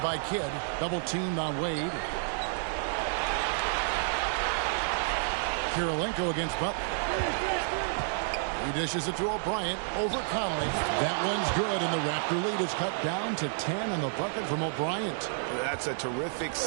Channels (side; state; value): left; silent; digital silence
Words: by Kidd. Double teamed on Wade. Kirilenko against Butler. He dishes it to O'Brien over Conley. That one's good, and the Raptor lead is cut down to 10 on the bucket from O'Brien. That's a terrific